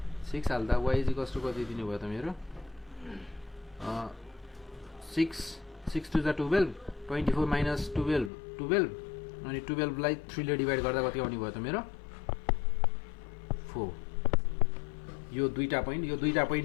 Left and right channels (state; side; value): drops out; right; at 8.3 s